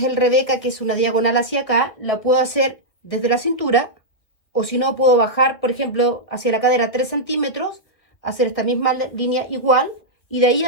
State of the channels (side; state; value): right; late; 1.6 ms